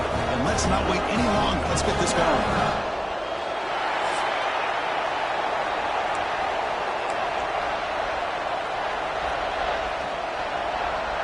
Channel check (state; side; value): identical; both; correlation 1.00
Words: and let's not wait any longer. Let's get this going.